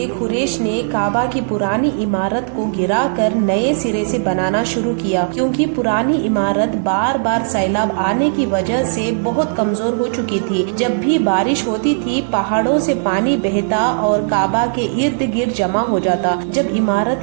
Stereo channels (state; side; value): silent; left; digital silence